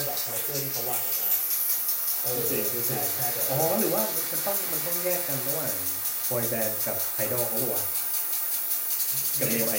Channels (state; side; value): identical; both; correlation 1.00